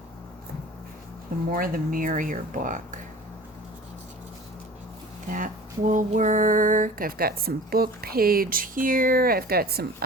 the More the Merrier book. That will work. I've got some book page here. I've got some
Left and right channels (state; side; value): normal; both; correlation 0.41